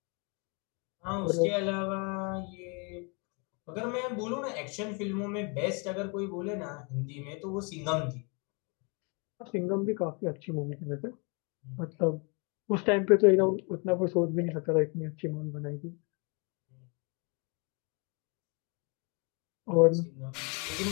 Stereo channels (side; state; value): right; quieter; 33.5 dB